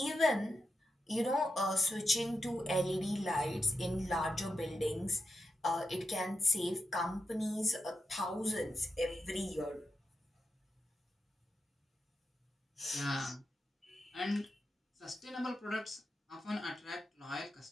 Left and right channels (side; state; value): both; normal; correlation 0.87